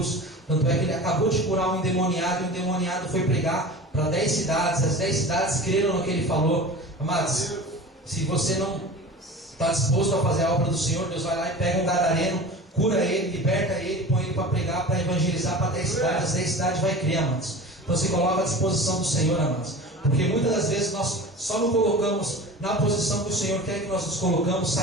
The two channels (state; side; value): normal; both; correlation 0.35